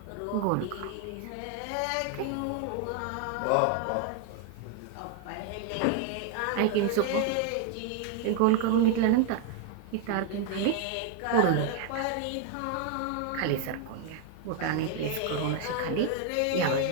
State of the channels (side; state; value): both; different; correlation 0.01